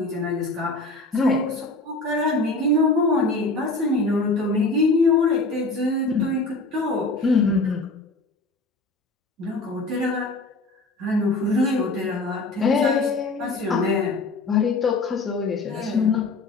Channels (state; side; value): quieter; right; 3.2 dB